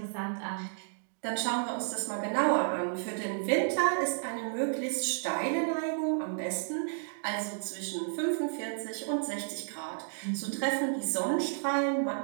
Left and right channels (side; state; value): left; silent; digital silence